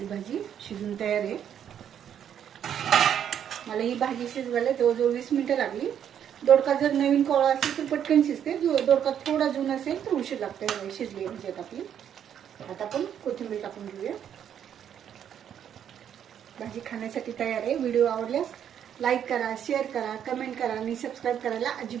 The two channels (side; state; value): left; quieter; 9.2 dB